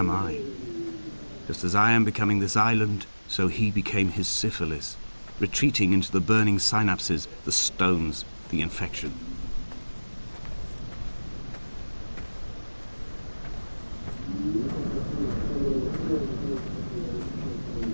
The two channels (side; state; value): both; inverted; correlation -1.00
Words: I. Just as I am becoming this island, So he became his syphilis, retreating into the burning synapses, the stones, the infection.